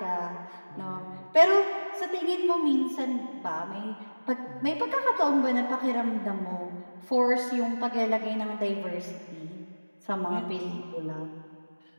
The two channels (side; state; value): both; inverted; correlation -1.00